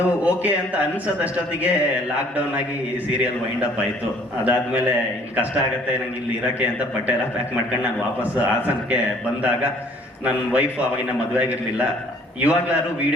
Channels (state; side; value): normal; both; correlation 0.57